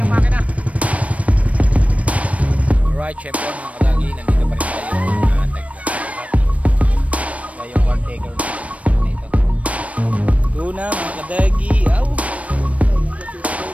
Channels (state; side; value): late; left; 0.066 ms